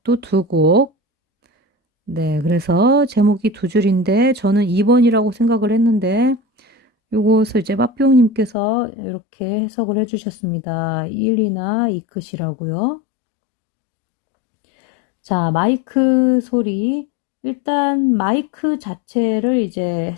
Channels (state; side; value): drops out; right; at 8.6 s